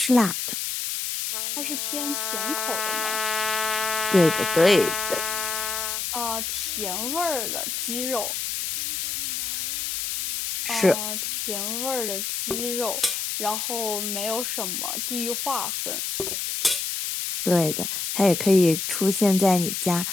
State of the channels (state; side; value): noise; left; hiss, 2 dB below the sound